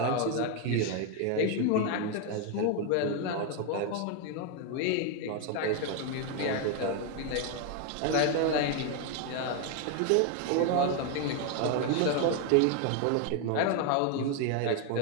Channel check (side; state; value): both; different; correlation 0.01